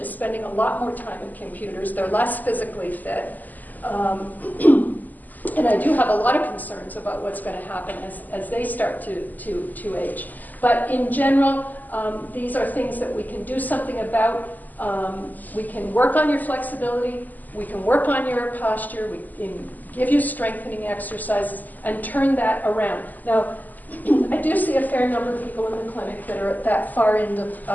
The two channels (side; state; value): right; late; 0.083 ms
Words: spending a lot more time at computers. They're less physically fit. And I do have a lot of concerns about what's going to happen as they start to age. But in general, these are things that we can do something about. We can work on your flexibility. We can work on your posture. We can give you strengthening exercises and turn that around. Now, I do see a fair number of people in the clinic that are at that far end